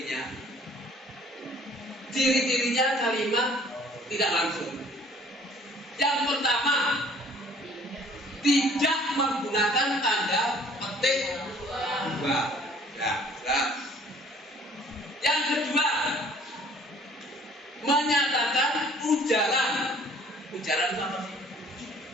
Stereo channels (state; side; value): normal; both; correlation 0.55